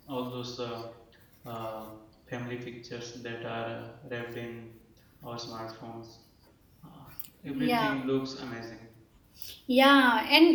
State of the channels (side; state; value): both; identical; correlation 1.00